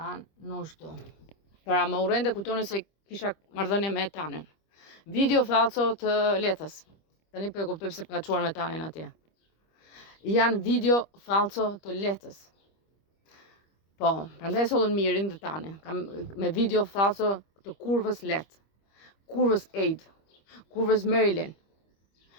Nushtu. Pra më urrente kujtonë se kisha marrëdhënie me Tanen. Video falso të letës. Tani po e kuptoj pse ka çuar me Tanen atje. Janë video falso të letës. Po, prandaj sollën mirin dhe Tanen. Me video falso të kurvës let. Kurvës Aid. Kurvës Marilyn,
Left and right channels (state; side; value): late; right; 25 ms